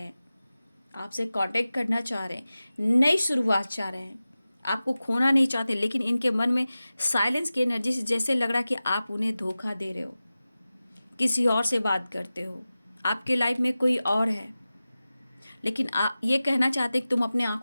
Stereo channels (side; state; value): both; inverted; correlation -0.95